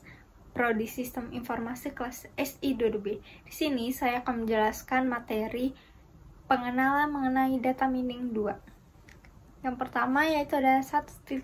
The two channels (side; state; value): both; identical; correlation 1.00